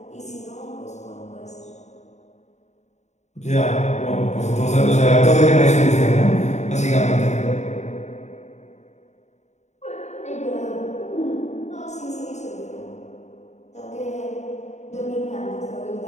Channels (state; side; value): late; right; 0.33 ms